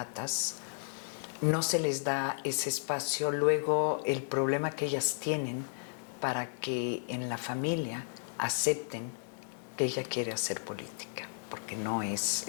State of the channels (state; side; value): silent; right; digital silence